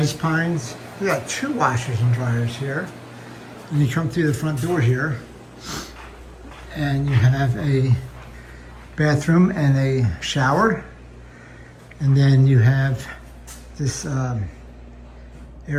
Pines. We got 2 washers and dryers here. And you come through the front door here and you have a bathroom and a shower. And then you have this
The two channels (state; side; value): identical; both; correlation 1.00